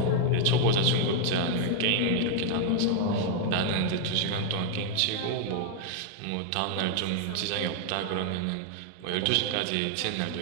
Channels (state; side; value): different; both; correlation 0.00